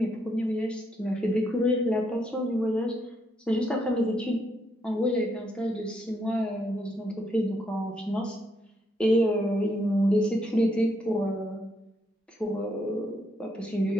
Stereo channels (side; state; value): both; normal; correlation 0.76